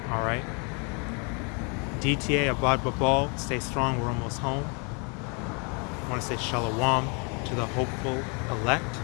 All right. DTA Abad Babal, stay strong, we're almost home. I want to say Shalom to the hopeful elect.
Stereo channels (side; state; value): right; quieter; 34.7 dB